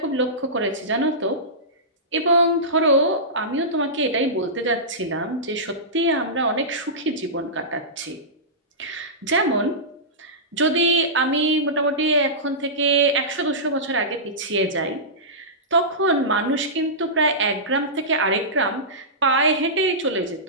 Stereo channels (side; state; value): both; normal; correlation -0.18